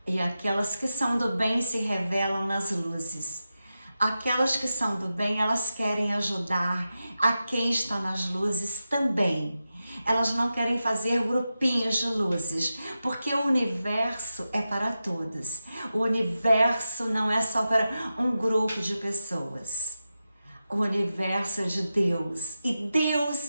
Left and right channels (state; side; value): inverted; both; correlation -0.91